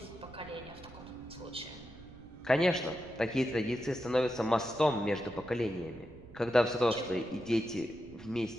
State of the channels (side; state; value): right; noise; rumble, 20 dB below the sound